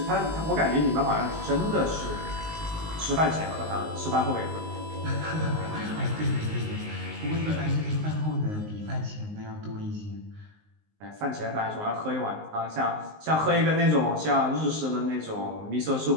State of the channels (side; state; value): left; late; 19 ms